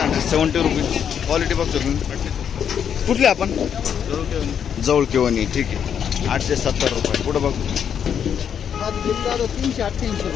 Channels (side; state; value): right; quieter; 8.2 dB